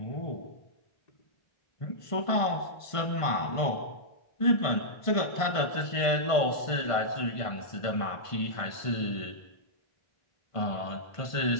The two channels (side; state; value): right; late; 1.5 ms